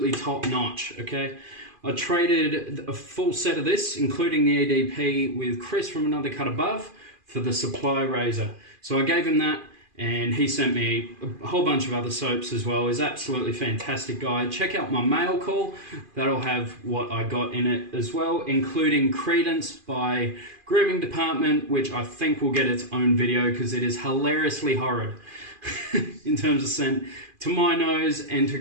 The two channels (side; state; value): left; late; 2.4 ms